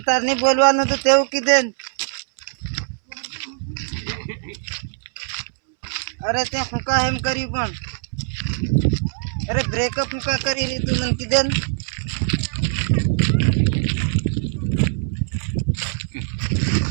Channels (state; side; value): silent; left; 64 dB below the other